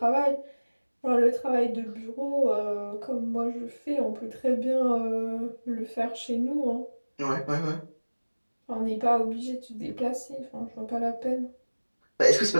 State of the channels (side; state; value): both; inverted; correlation -1.00